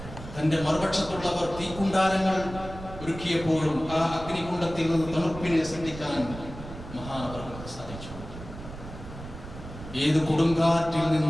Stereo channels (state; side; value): noise; right; rumble, 13 dB below the sound